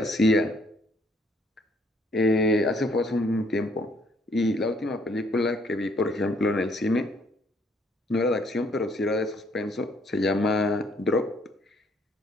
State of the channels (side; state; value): both; normal; correlation 0.65